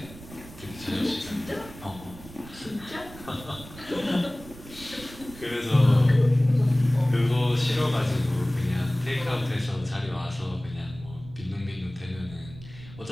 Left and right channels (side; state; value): right; noise; rumble, 17 dB below the sound